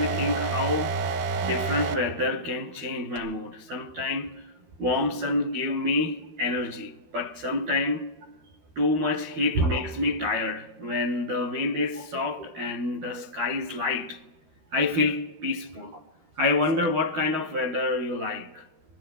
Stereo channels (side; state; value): left; late; 13 ms